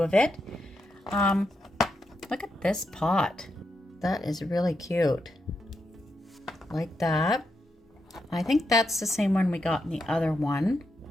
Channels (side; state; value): both; normal; correlation 0.84